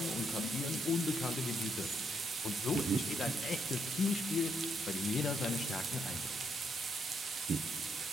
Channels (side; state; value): both; normal; correlation 0.77